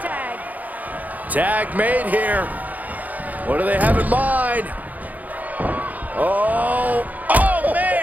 tag. Tag made here. What do they have in mind? Oh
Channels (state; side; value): late; left; 0.079 ms